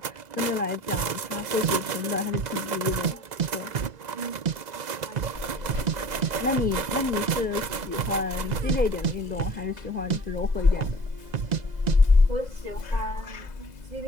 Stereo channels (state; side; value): late; left; 2.0 ms